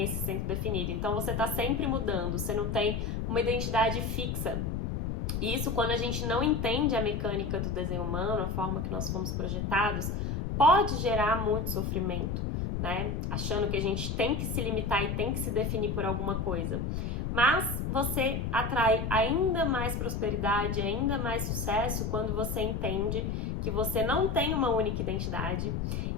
esse centro definido. Então, você está sempre mudando, você não tem uma identidade fixa. Isso, quando a gente não entende a mecânica do desenho humano, a forma que nós fomos projetados, pode gerar muito sofrimento, né? Achando que a gente tem que se limitar e tem que se definir por alguma coisa. Mas você atrai ainda mais prosperidade, ainda mais sucesso quando você entende que você não tem uma única identidade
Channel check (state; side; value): noise; left; rumble, 2 dB below the sound